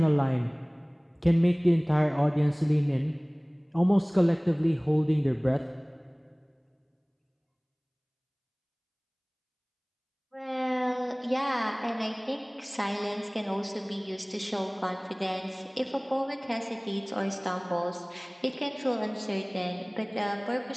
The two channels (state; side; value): identical; both; correlation 1.00